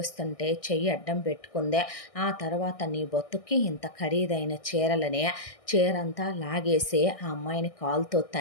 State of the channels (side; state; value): right; late; 1.6 ms